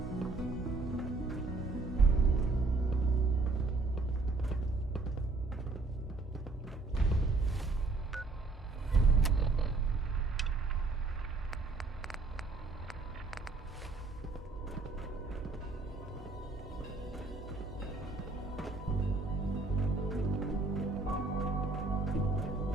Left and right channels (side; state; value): left; quieter; 3.5 dB